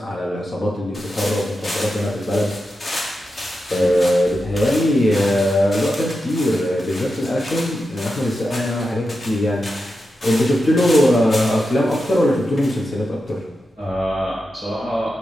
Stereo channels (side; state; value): both; normal; correlation 0.89